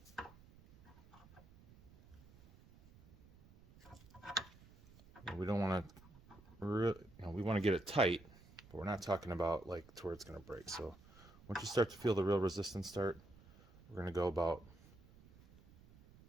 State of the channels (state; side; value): noise; right; rumble, 23 dB below the sound